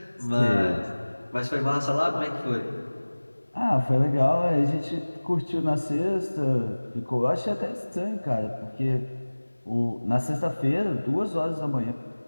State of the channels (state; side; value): inverted; both; correlation -1.00